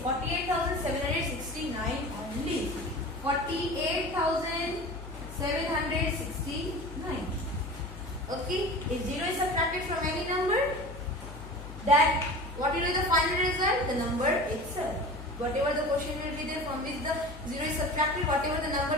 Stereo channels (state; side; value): noise; left; hum, 12 dB below the sound